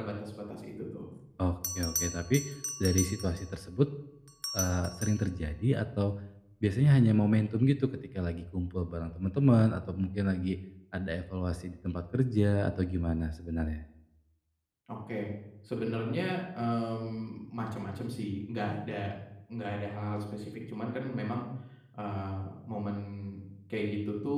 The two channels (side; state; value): both; identical; correlation 1.00